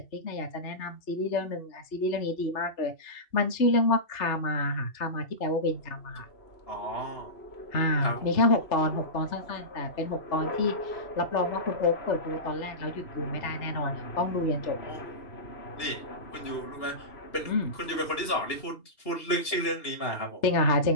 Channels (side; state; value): right; late; 2.8 ms